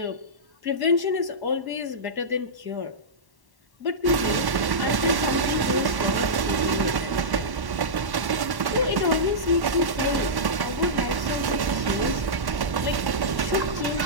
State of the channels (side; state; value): left; late; 1.1 ms